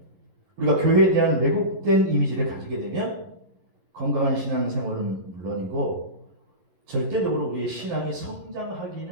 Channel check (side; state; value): left; late; 11 ms